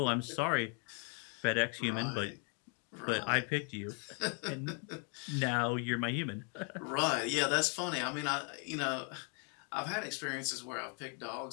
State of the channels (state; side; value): quieter; right; 39.4 dB